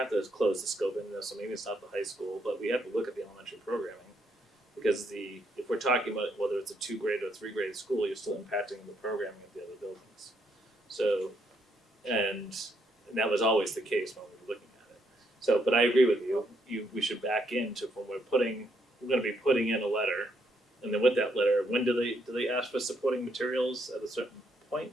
to close the scope in this, so maybe it's not the high school, but we have to look at the elementary programming. Because if we're talking about whether it's a 2-grade or 3-grade school, you're still impacting the programming of the other buildings. So, and that was always the case when we were looking at it. So, but I agree with you, we should back into when we're gonna be putting in a letter. And then with that letter, when do they ask for supporting materials at a certain point,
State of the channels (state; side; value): normal; both; correlation 0.74